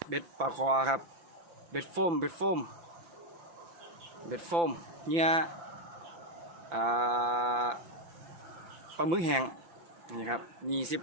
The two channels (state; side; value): late; left; 5.9 ms